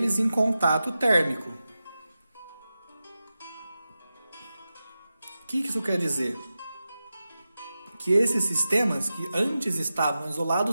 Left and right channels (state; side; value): inverted; both; correlation -0.93